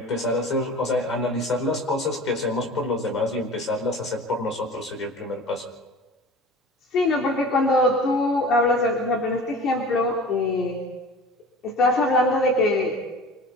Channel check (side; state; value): both; normal; correlation 0.39